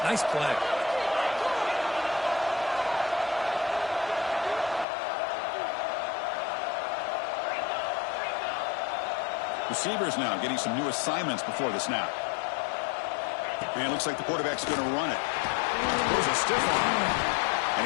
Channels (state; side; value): drops out; right; at 4.9 s